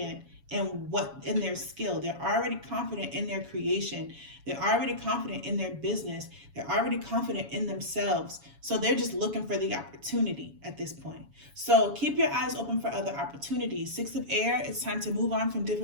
in their skill. They're already confident in their creation. They're already confident in their business. They're already confident in themselves. So they're just looking for the opportunity at this point. So keep your eyes open for other opportunities. 6 of Air, it's time to move on from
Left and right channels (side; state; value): left; late; 7.1 ms